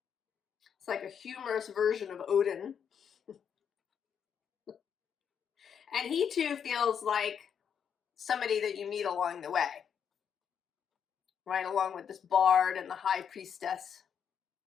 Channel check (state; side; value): quieter; right; 7.7 dB